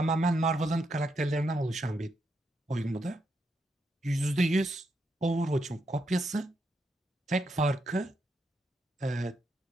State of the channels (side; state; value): both; normal; correlation 0.80